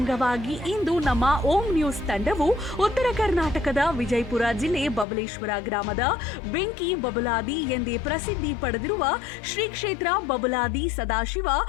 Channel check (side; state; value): right; drops out; at 5.1 s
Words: ಇಂದು ನಮ್ಮ ಓಂ ನ್ಯೂಸ್ ತಂಡವು ಉತ್ತರ ಕರ್ನಾಟಕದ ವಿಜಯಪುರ ಜಿಲ್ಲೆ ಬಬಲೇಶ್ವರ ಗ್ರಾಮದ ಬೆಂಕಿ ಬಬಲಾದಿ ಎಂದೇ ಪ್ರಸಿದ್ಧಿ ಪಡೆದಿರುವ ಶ್ರೀ ಕ್ಷೇತ್ರ ಬಬಲಾದಿ ಸದಾಶಿವ